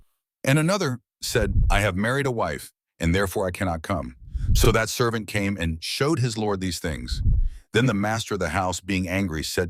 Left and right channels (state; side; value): identical; both; correlation 1.00